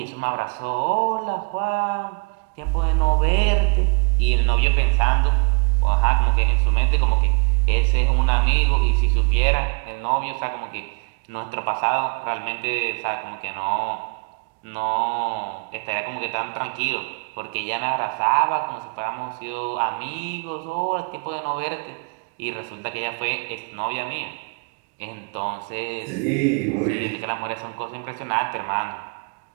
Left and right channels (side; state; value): left; quieter; 33.7 dB